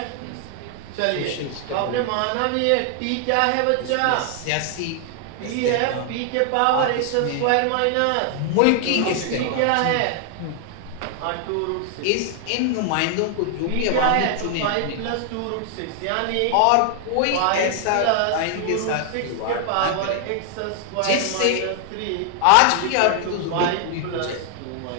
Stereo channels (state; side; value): different; both; correlation 0.00